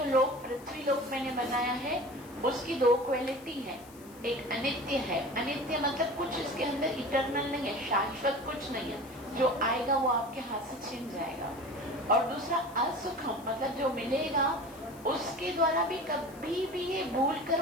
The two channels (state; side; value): noise; left; hiss, 22 dB below the sound